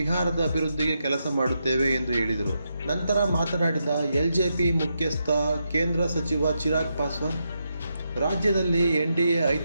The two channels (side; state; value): both; inverted; correlation -0.83